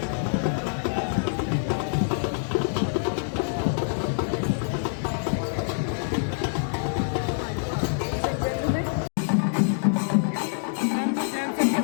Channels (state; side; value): silent; right; digital silence